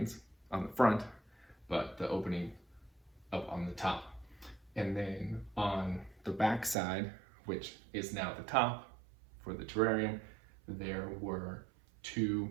on the front, but the opening up on the top. And then on the back side, which is now the top for the terrarium, there were two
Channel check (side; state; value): left; drops out; at 6.8 s